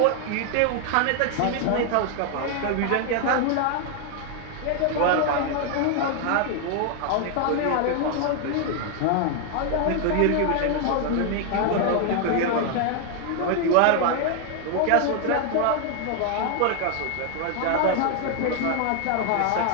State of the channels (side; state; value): both; different; correlation 0.00